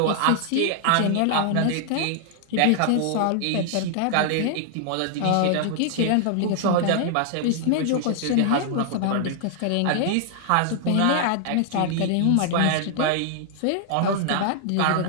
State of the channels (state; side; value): different; both; correlation 0.00